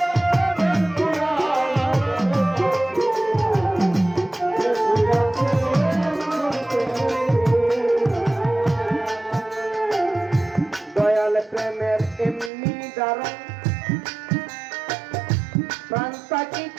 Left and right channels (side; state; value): left; drops out; at 12.5 s